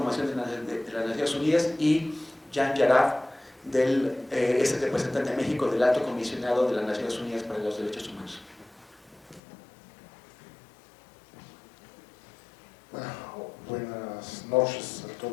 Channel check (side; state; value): right; drops out; at 9.4 s